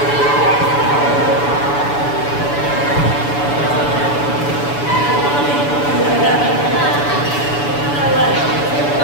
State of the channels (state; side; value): late; right; 7.0 ms